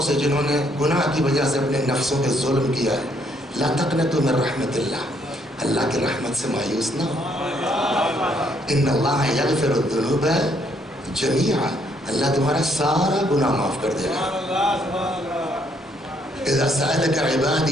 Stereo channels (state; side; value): normal; both; correlation 0.70